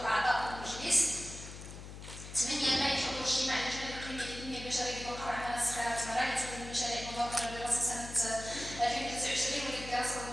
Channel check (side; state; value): left; noise; hum, 12 dB below the sound